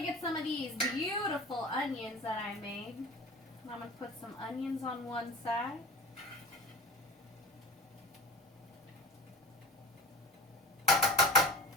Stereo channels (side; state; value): both; normal; correlation 0.36